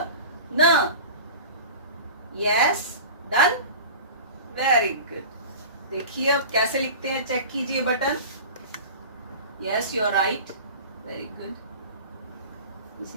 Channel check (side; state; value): both; inverted; correlation -0.36